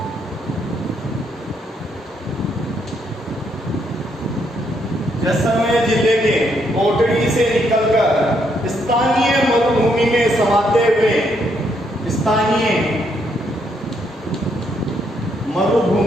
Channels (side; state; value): both; normal; correlation 0.74